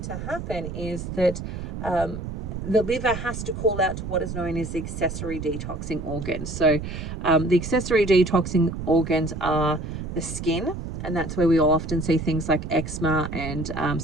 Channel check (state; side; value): noise; right; rumble, 7 dB below the sound